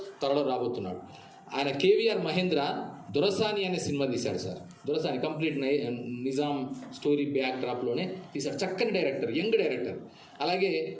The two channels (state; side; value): identical; both; correlation 1.00